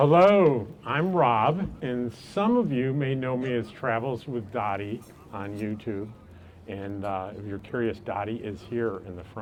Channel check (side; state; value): both; identical; correlation 1.00